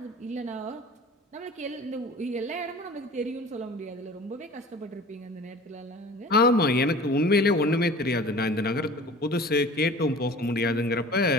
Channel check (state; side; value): normal; both; correlation 0.43